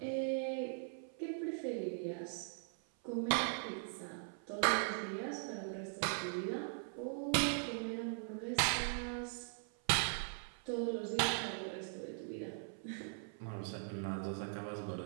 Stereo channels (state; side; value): silent; left; 51 dB below the other